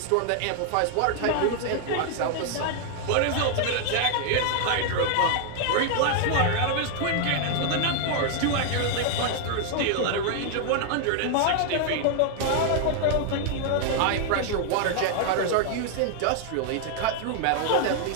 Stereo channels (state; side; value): different; both; correlation 0.00